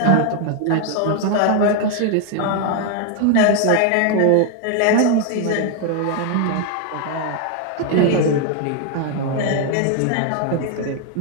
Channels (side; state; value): both; different; correlation 0.00